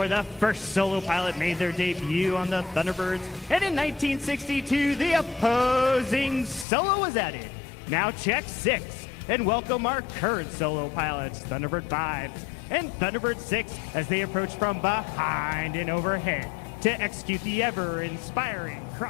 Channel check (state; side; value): drops out; right; at 6.7 s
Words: The first solo pilot made their debut on the Thunderbirds, and in 1962 the opposing solo was added. Now check 6 and welcome our current solo pilots, Thunderbird 5 and Thunderbird 6, as they approach from behind and overhead to execute the ever-inspiring